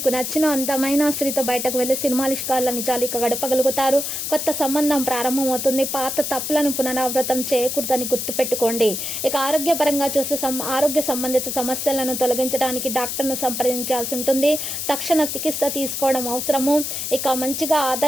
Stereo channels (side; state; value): left; noise; hiss, 4 dB below the sound